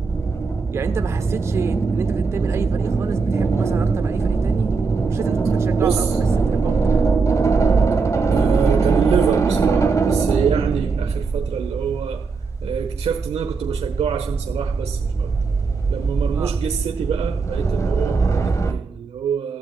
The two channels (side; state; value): left; quieter; 4.7 dB